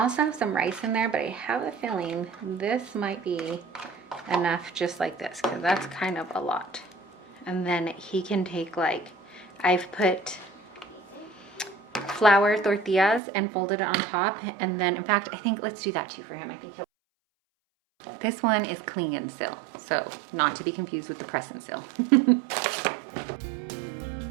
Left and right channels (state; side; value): drops out; left; at 13.2 s